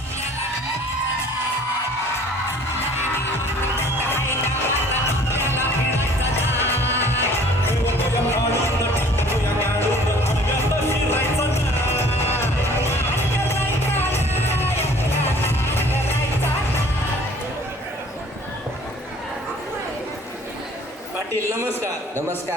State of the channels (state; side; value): normal; both; correlation 0.52